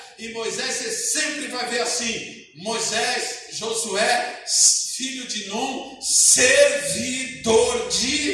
e Moisés, você sempre vai ver assim: Moisés, Josué, filho de Num, servidor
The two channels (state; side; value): identical; both; correlation 1.00